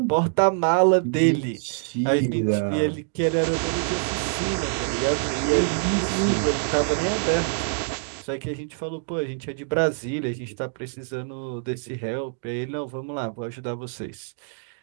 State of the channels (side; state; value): left; silent; digital silence